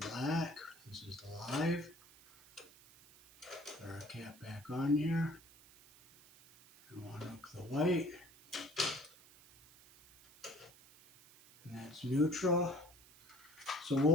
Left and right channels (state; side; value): noise; right; hiss, 23 dB below the sound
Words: black. This is the live. Put our cap back on here, and we'll unhook the white, and that's neutral. So